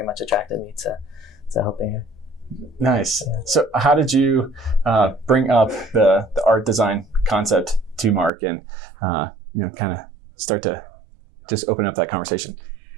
much attracted me helping her. Nice. So how did you bring up the art design concept to Mark and kind of start to just open up that conversation?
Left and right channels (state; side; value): drops out; left; at 8.3 s